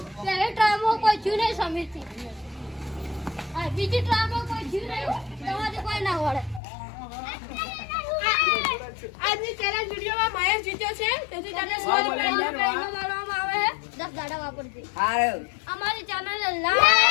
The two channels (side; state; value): right; drops out; at 6.6 s